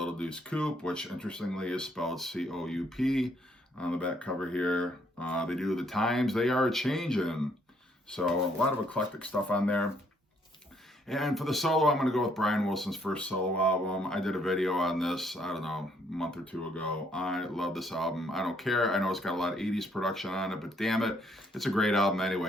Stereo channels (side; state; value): both; normal; correlation 0.69